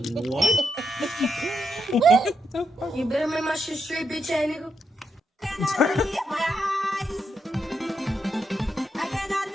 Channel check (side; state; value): both; normal; correlation 0.82